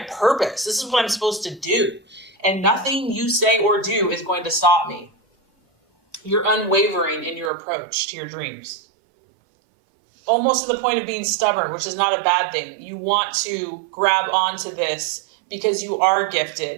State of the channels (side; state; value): left; drops out; at 7.5 s